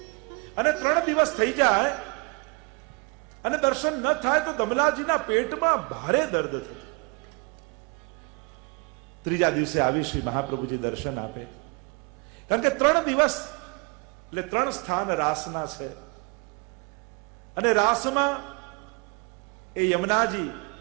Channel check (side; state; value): left; quieter; 31.5 dB